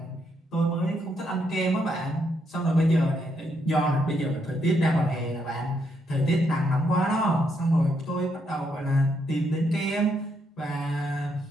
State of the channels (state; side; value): normal; both; correlation 0.77